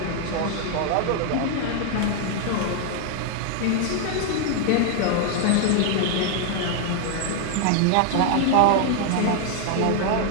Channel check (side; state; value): both; different; correlation 0.00